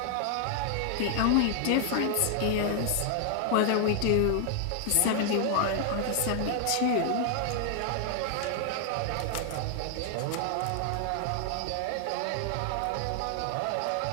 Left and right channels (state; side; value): different; both; correlation 0.00